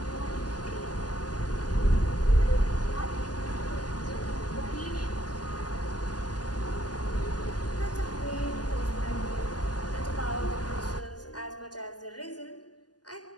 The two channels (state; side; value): late; right; 0.69 ms